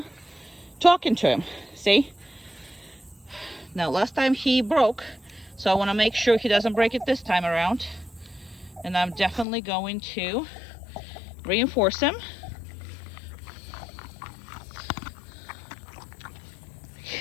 talking to him. See? Now, last time he broke, so I want to make sure he doesn't break it this time around. And I'm definitely going to reinforce him.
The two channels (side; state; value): right; drops out; at 9.5 s